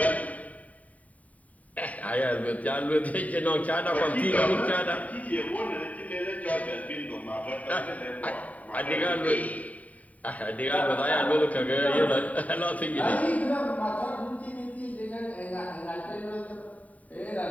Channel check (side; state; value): right; late; 0.070 ms